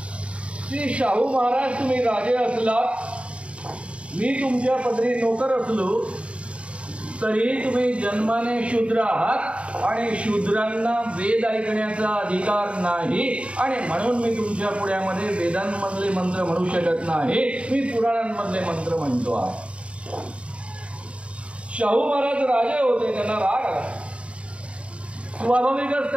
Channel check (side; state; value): left; late; 0.060 ms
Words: की शाहू महाराज, तुम्ही राजे असलात, मी तुमच्या पदरी नोकर असलो तरी तुम्ही जन्माने शूद्र आहात आणि शूद्रांना वेद ऐकण्याचा अधिकार नाही आणि म्हणून मी तुमच्या पुढ्यामध्ये वेदांमधले मंत्र म्हणू शकत नाही, मी पुराणांमधले मंत्र म्हणतो आहे। शाहू महाराज राजे होते, त्यांना राग आला। स्वाभाविकच